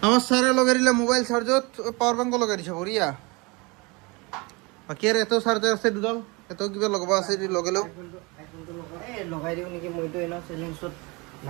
আমার সারে লগাইলে মোবাইল চার্জত পাওয়ার ব্যাংক লগাই দিছে বড়িয়া বাকি আর এত চার্জার আছে দুডাল এত কিবা লগাবা আছে লগালেও এই লগাই দিও নেকি মইতো এনা চ্যালেঞ্জত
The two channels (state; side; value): quieter; left; 26.9 dB